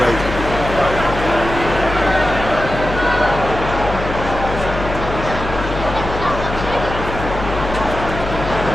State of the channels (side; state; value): left; noise; hum, 6 dB below the sound